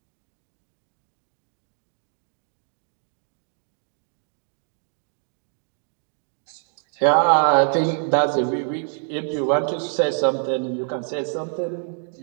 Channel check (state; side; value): silent; left; 61 dB below the other